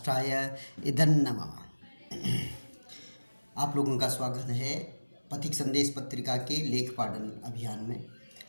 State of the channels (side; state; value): both; inverted; correlation -1.00